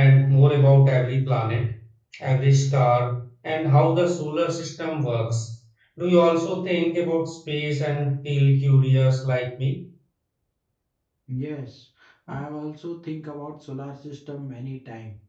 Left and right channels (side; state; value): both; identical; correlation 1.00